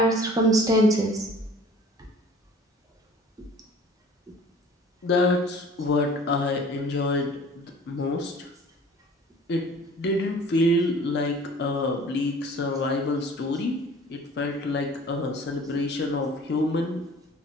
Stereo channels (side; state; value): both; normal; correlation 0.48